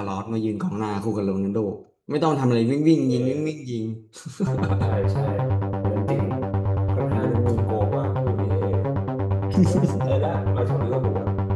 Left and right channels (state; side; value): identical; both; correlation 1.00